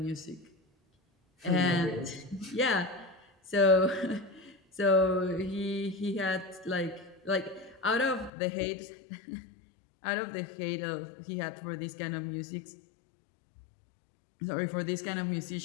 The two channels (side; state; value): right; drops out; at 8.3 s